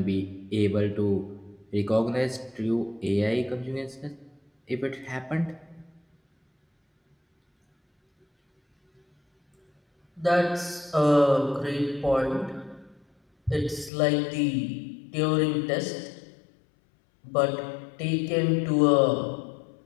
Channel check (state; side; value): drops out; right; at 13.9 s